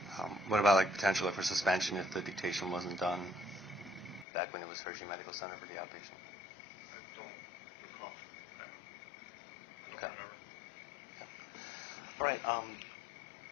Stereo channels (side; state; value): right; drops out; at 4.2 s